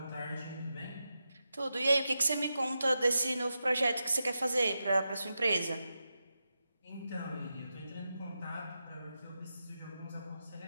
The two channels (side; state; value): both; inverted; correlation -0.89